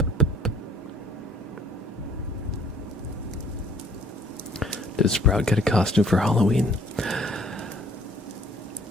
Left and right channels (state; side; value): normal; both; correlation 0.57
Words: Did Sprout get a costume for Halloween?